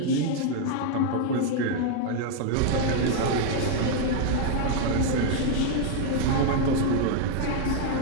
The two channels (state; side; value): different; both; correlation 0.00